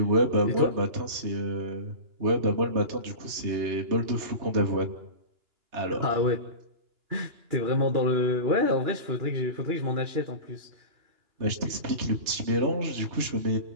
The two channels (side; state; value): left; late; 2.9 ms